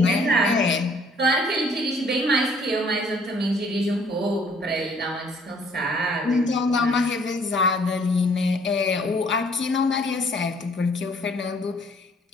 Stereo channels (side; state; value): both; normal; correlation 0.60